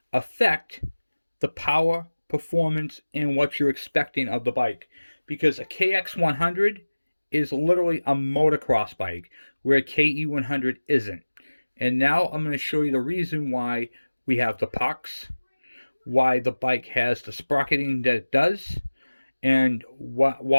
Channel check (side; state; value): both; inverted; correlation -1.00